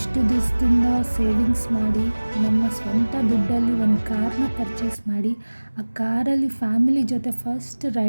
ದಿವಸದಿಂದ ಸೇವಿಂಗ್ಸ್ ಮಾಡಿ ನಮ್ಮ ಸ್ವಂತ ದುಡ್ಡಲ್ಲಿ ಒಂದು ಕಾರ್ನ ಪರ್ಚೇಸ್ ಮಾಡಿ ಆ ಕಾರಲ್ಲಿ ಫ್ಯಾಮಿಲಿ ಜೊತೆ ಫಸ್ಟ್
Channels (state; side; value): inverted; both; correlation -1.00